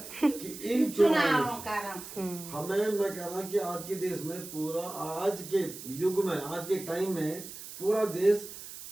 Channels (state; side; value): noise; right; hiss, 12 dB below the sound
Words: कि इन चुनावों हमें, मैं कह रहा हूँ कि आज के देश में पूरा आज के युग में आज के टाइम में पूरा देश